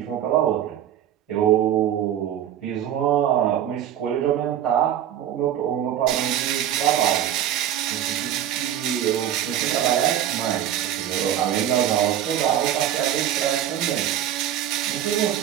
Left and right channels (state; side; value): quieter; left; 10.8 dB